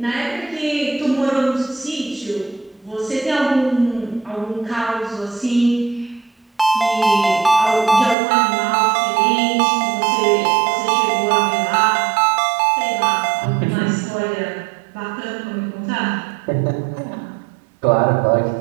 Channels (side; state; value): left; drops out; at 8.2 s